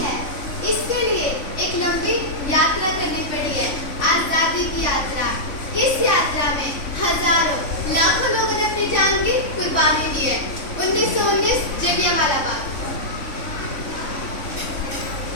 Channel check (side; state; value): right; late; 3.5 ms